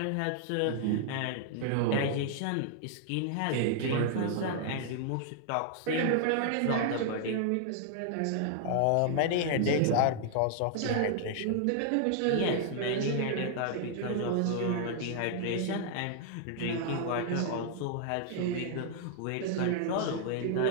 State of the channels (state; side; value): different; both; correlation -0.01